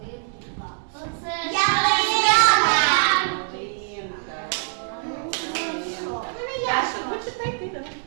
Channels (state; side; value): silent; left; digital silence